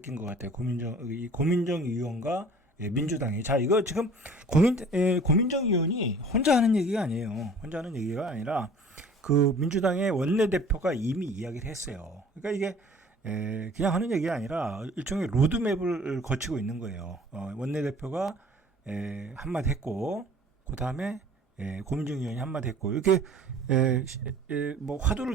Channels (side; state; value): both; normal; correlation 0.49